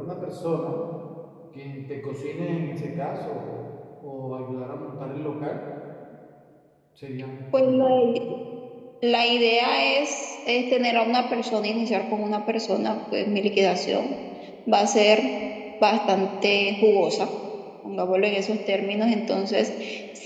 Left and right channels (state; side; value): identical; both; correlation 1.00